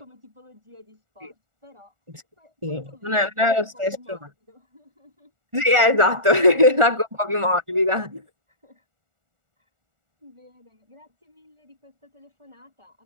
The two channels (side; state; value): left; late; 1.4 ms